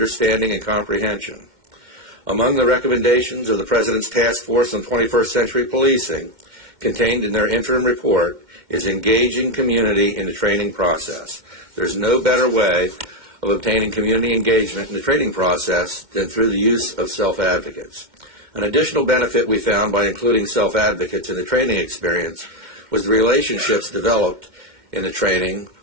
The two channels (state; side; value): late; left; 2.1 ms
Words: and comprehension. Among the recommendations of the President's Task Force on 21st Century Policing, contained in their interim report, is engaging community in the training process. There's no better way of obtaining community engagement in the training process than through the use of self-advocates. An additional benefit we found by including self-advocates in the training experience was the relationships developed in the training